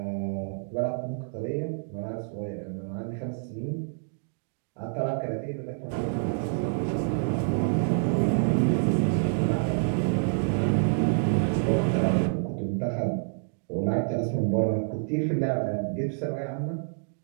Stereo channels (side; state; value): left; silent; digital silence